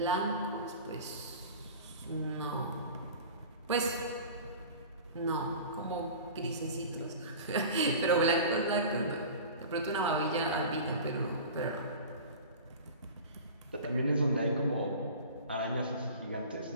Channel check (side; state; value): both; inverted; correlation -0.37